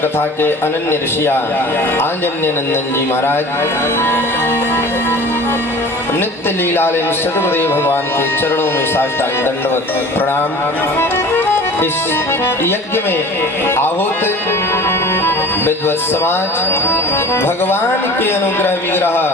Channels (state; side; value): normal; both; correlation 0.41